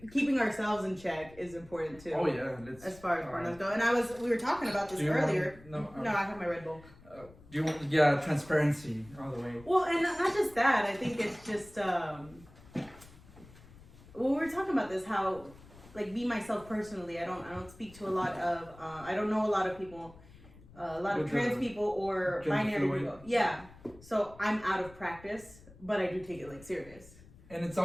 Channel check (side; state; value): left; noise; rumble, 22 dB below the sound